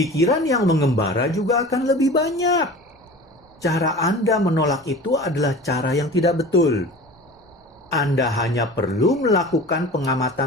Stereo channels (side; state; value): both; normal; correlation 0.38